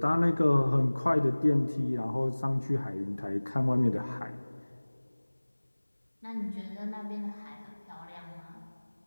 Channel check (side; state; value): both; inverted; correlation -1.00